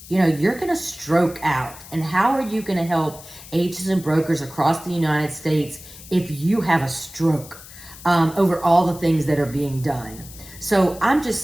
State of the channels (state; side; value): noise; left; hiss, 17 dB below the sound